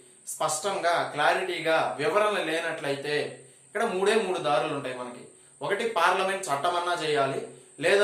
స్పష్టంగా, క్లారిటీగా వివరణ లేనట్లయితే ఇక్కడ 3 దారులు ఉంటాయి మనకి. ఒకటి, పార్లమెంట్ చట్టమన్నా చేయాలి,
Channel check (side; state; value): both; identical; correlation 1.00